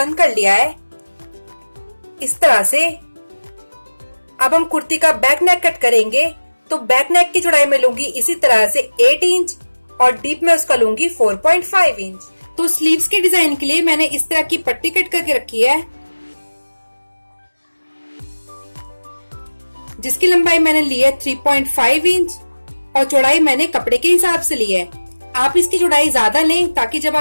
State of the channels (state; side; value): inverted; both; correlation -1.00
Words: कर लिया है इस तरह से। अब हम कुर्ती का बैक नेक कट करेंगे। तो बैक नेक की चौड़ाई में लूंगी इसी तरह से 8 इंच और डीप में उसका लूंगी 4.5 इंच। तो स्लीव्स के डिजाइन के लिए मैंने इस तरह की पट्टी कट करके रखी है जिसकी लंबाई मैंने ली है 3.5 इंच और चौड़ाई मैंने कपड़े के हिसाब से ली है। आप इसकी चौड़ाई ज्यादा लें ताकि जब